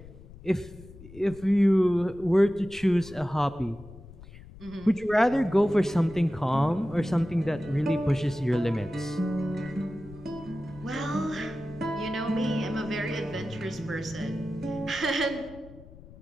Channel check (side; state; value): left; noise; rumble, 19 dB below the sound